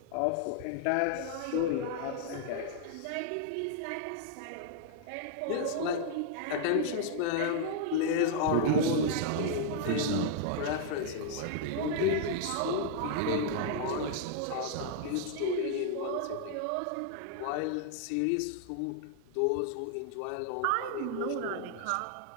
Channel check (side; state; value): both; different; correlation -0.01